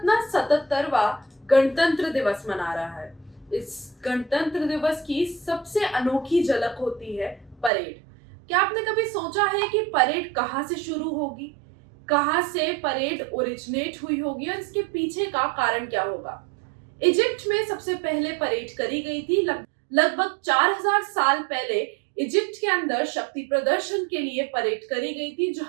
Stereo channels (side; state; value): left; drops out; at 7.7 s